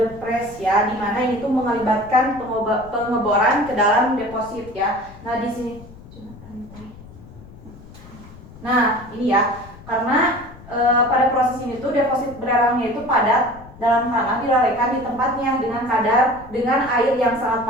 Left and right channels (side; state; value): left; noise; rumble, 19 dB below the sound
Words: press ya, di mana ini tuh melibatkan pengeboran ke dalam deposit ya. Nah, di sini nah, ini ya. Karena pada proses ini tuh deposit belerangnya itu padat dalam tanah dilalaikan di tempatnya dengan air yang sangat